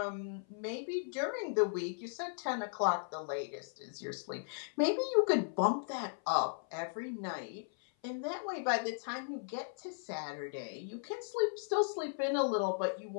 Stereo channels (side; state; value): right; silent; 53 dB below the other